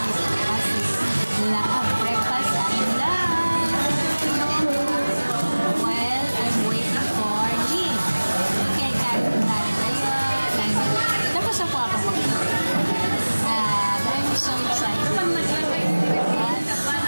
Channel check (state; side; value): inverted; both; correlation -1.00